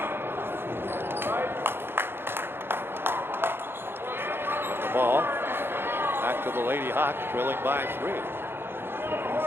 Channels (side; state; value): left; late; 0.11 ms